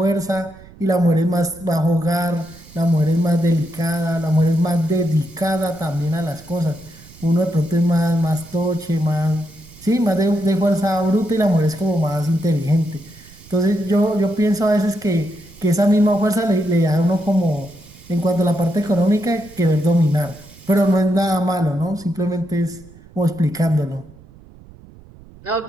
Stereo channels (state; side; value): noise; right; rumble, 22 dB below the sound